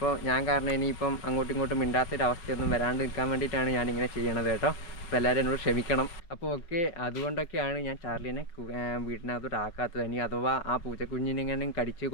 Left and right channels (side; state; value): right; late; 5.5 ms